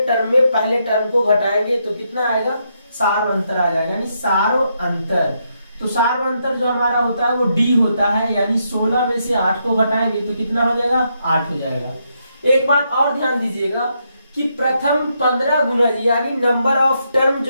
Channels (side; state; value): both; inverted; correlation -0.79